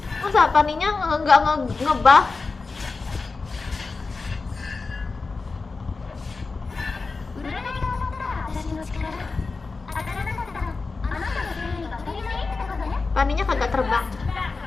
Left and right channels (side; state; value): right; quieter; 4.1 dB